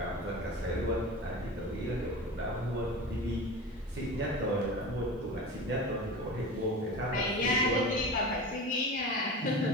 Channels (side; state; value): both; normal; correlation 0.31